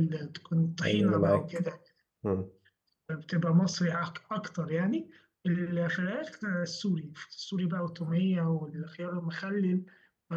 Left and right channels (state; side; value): identical; both; correlation 1.00